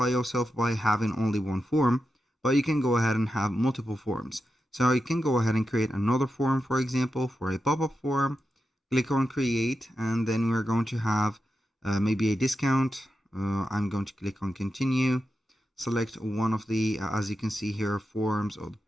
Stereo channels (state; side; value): normal; both; correlation 0.89